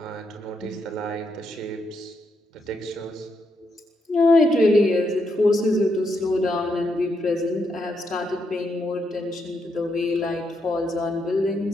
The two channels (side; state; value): both; normal; correlation 0.80